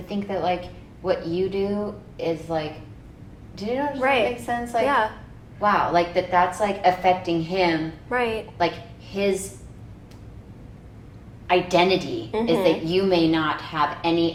think that like what you do is like, do you know if Right. that makes sense? Like, Yeah. wow, like that's like affecting him. Right. Like his identity is Mhm. that you may not have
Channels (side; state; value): both; identical; correlation 1.00